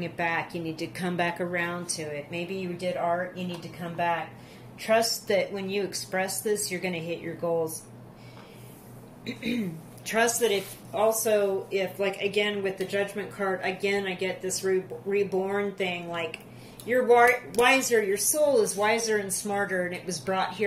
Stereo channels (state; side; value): identical; both; correlation 1.00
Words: it back. You need to come back around to it. Maybe you did art, you need to come back. Trust that when you express this, you're going to hit your goals. Trust that if, like, again, with the Judgment card, again, I get this reborn thing, like, you're wiser, your soul is wiser and smarter, and it was brought